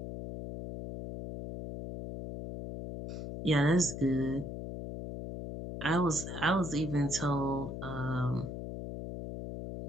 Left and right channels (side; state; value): left; noise; hum, 7 dB below the sound